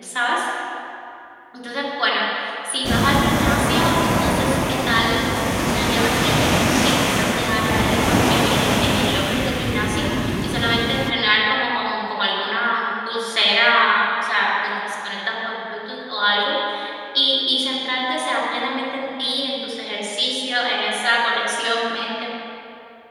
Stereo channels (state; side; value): identical; both; correlation 1.00